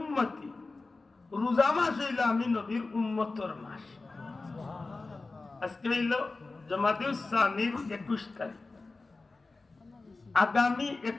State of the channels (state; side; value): quieter; right; 3.6 dB